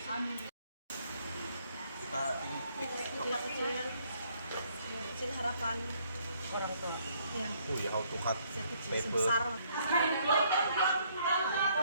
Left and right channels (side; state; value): both; inverted; correlation -0.67